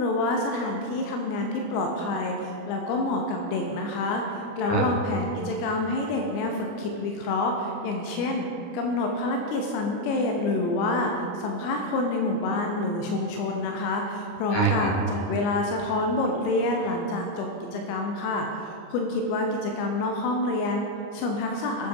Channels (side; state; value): right; late; 29 ms